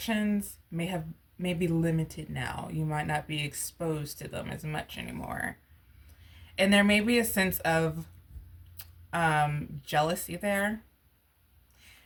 may be limited now. You might not be exposed to them as much anymore. And there may be a sense of jealousy there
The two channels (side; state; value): both; identical; correlation 1.00